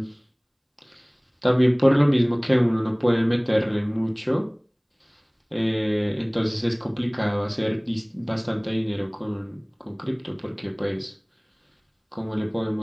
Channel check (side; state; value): both; identical; correlation 1.00